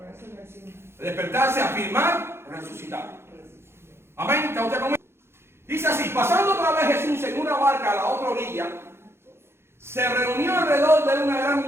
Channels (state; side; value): late; left; 0.12 ms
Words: Despertarse, afirmar, resucitar. Amén. ¿Está usted conmigo? Dice así, pasando otra vez Jesús en una barca a la otra orilla, se reunió alrededor de él una gran